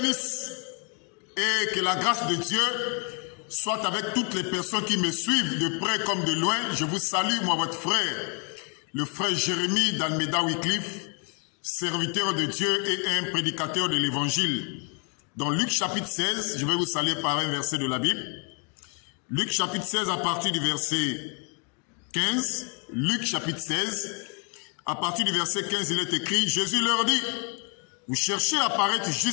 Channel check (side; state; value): right; quieter; 37.3 dB